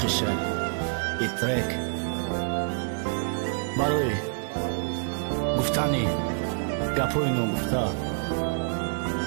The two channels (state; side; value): silent; left; digital silence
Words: I trek Baroi Guftani Gapoino Gufta